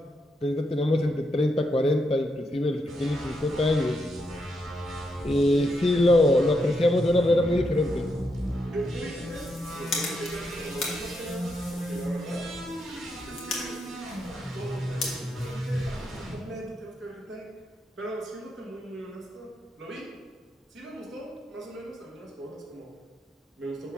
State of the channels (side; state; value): both; normal; correlation 0.81